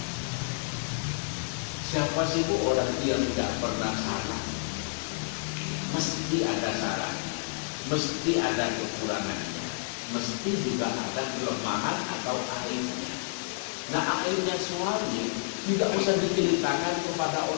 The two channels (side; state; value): right; silent; digital silence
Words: Siapa sih bu orang yang tidak pernah salah? Mesti ada salah, mesti ada kekurangannya, mesti juga ada kelemahan atau aibnya. Nah, aibnya suami tidak usah diceritakan kepada